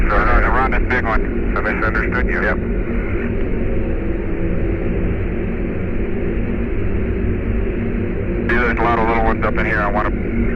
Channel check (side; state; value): both; identical; correlation 1.00